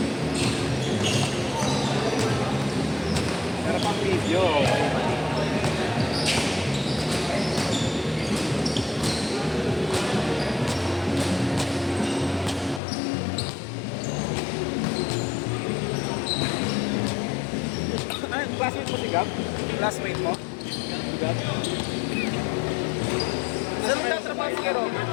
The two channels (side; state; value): right; drops out; at 12.8 s